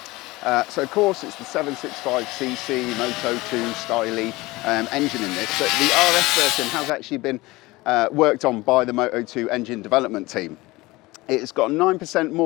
So of course it's the 765cc Moto 2 styly engine in this, but the RS version has actually been worked on by the Moto 2 engine development team. It's got 9%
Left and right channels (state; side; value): quieter; right; 20.7 dB